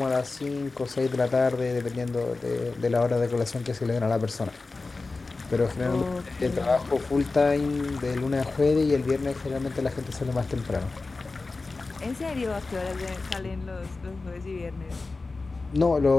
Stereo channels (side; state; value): right; quieter; 3.7 dB